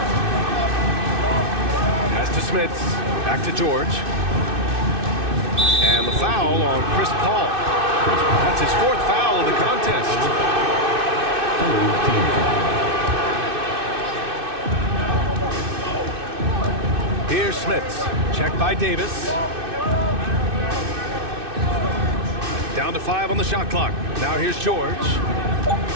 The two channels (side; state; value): left; late; 2.6 ms